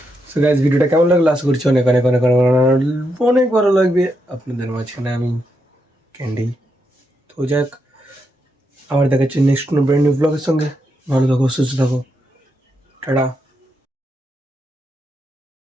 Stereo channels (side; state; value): both; normal; correlation 0.82